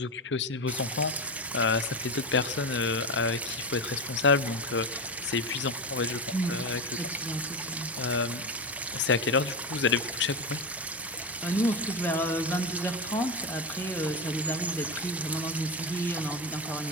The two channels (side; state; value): both; normal; correlation 0.16